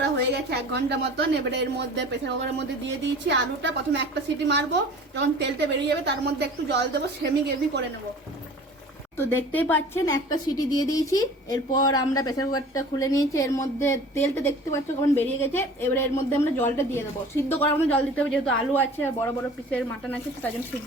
হয়ে গেছে 1 ঘন্টা মতন। এবারে এর মধ্যে প্রেসার কুকারের মধ্যে দিয়ে দিয়েছি আলুটা। প্রথমে একটা সিটি মারবো, যখন তেলটা বেরিয়ে যাবে তার মধ্যে একটু জল দেবো, সেমি গ্রেভি করে নেবো। তো দেখতেই পাচ্ছেন একটা সিটি দিয়ে দিয়েছি। এরপর আমরা প্রেসার কুকারটা খুলে নিয়েছি, এর মধ্যে তেলটা দেখতে পাচ্ছ কেমন বেরিয়ে গেছে। এবারে এর মধ্যে আমরা জলটা দিয়ে দেবো, সিদ্ধ করার মতো জল দিতে হবে, যেহেতু আলু আছে আর বড় বড় পিসের মাটন আছে, তার জন্য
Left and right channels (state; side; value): normal; both; correlation 0.43